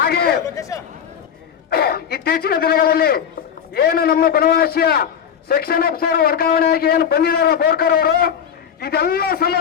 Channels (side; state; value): right; quieter; 8.2 dB